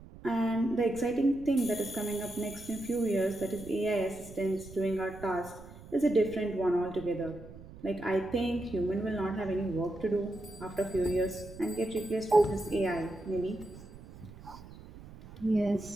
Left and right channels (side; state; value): right; noise; rumble, 17 dB below the sound